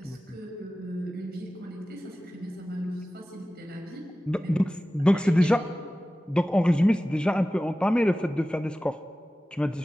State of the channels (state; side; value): normal; both; correlation 0.96